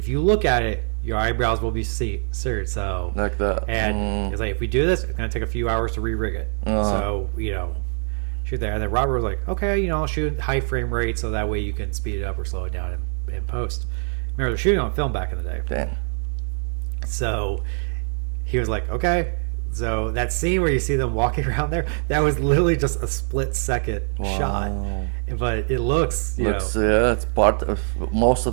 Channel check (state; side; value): silent; left; 59 dB below the other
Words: you look at it, your eyebrows will be seared. So Like that. and it's like if we do this, it's gonna take a few hours to re-rig it. So shoot there. And then Robert was like, okay, I'll shoot high frame rate so that way you can speed it up or slow it down in post. Remember, they're shooting on film back in the day. Damn. So he was like, okay. So that scene where you see them walking around there, that was literally just a split-second shot. But it looks, It's part of most